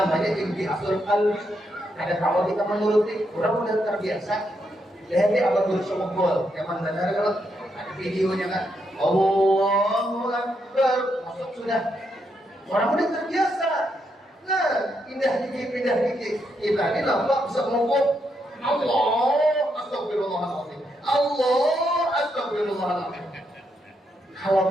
intihasul qalbi. Ada kalau kita menuruti, orang udah terbiasa. Lihat dia abang bersama gol, zaman benar kalau ada videonya kan. Allahu Akbar, masuk sudah. Orang udah terbiasa. Nah, pindah dikit. Kita ini nampak bisa ngomong Allah, astagfirullahaladzim. Allah, astagfirullahaladzim.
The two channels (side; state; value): both; normal; correlation 0.80